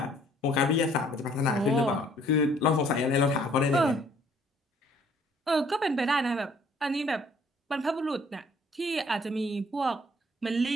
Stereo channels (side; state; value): both; normal; correlation 0.60